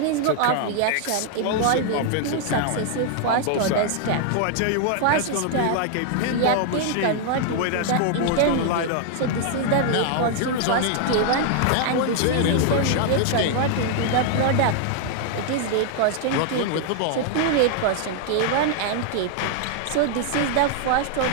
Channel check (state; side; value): different; both; correlation 0.00